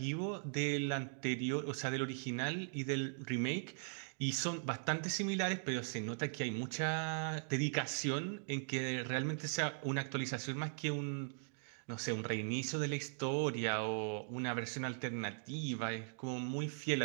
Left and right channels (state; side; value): silent; left; digital silence